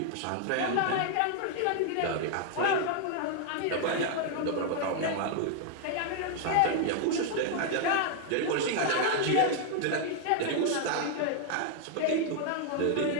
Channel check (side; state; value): both; different; correlation 0.00